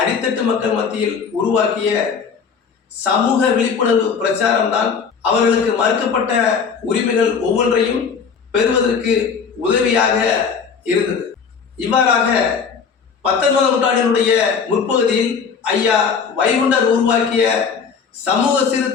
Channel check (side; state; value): right; quieter; 6.1 dB